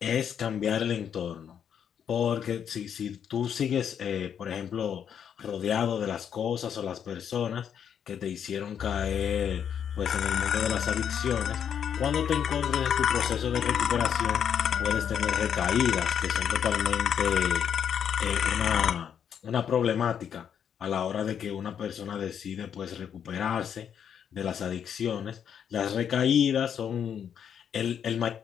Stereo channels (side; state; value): right; quieter; 8.4 dB